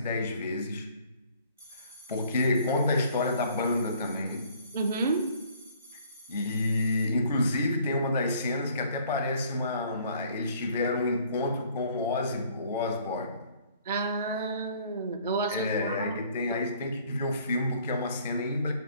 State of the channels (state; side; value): inverted; both; correlation -0.58